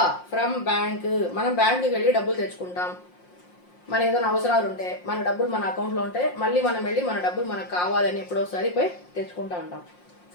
from bank. మనం బ్యాంకుకి వెళ్ళి డబ్బులు తెచ్చుకుంటాం, మన ఏదైనా అవసరాలు ఉంటే, మన డబ్బులు మన అకౌంట్లో ఉంటే మళ్ళీ మనం వెళ్ళి మన డబ్బులు మనకు కావాలని ఎప్పుడోసారి పోయి తెచ్చుకుంటా ఉంటాం.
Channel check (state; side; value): late; right; 5.6 ms